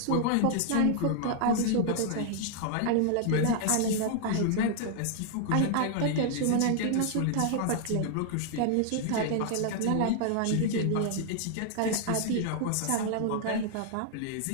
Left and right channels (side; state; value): both; different; correlation 0.00